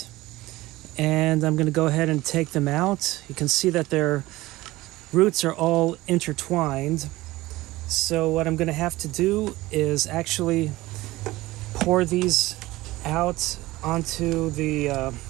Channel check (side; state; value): left; quieter; 18.6 dB